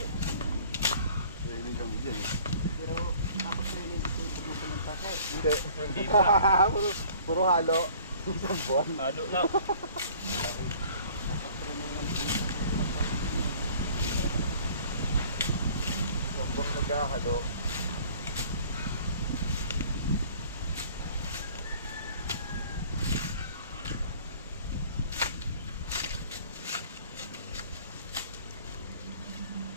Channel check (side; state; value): both; inverted; correlation -0.51